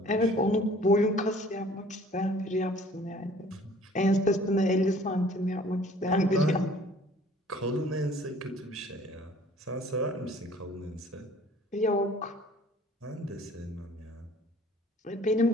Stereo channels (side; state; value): both; normal; correlation 0.53